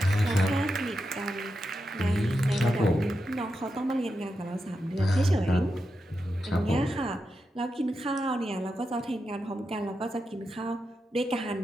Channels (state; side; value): normal; both; correlation 0.87